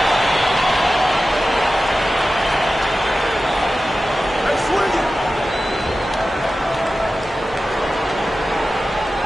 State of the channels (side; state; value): both; normal; correlation 0.94